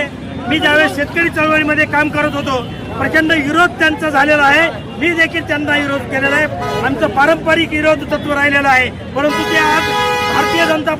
मी ज्यावेळेस शेतकरी चळवळीमध्ये काम करत होतो, प्रचंड विरोध त्यांचा झालेला आहे. मी देखील त्यांना विरोध केलेला आहे. आमचं पारंपरिक विरोध तत्व राहिलेलं आहे. परंतु ते आज भारतीय जनता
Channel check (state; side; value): identical; both; correlation 1.00